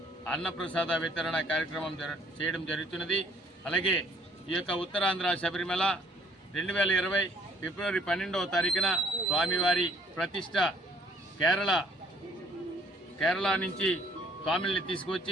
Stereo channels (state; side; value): normal; both; correlation 0.61